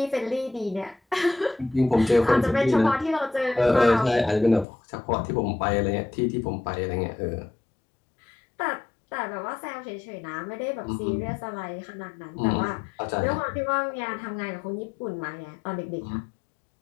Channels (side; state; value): right; drops out; at 4.7 s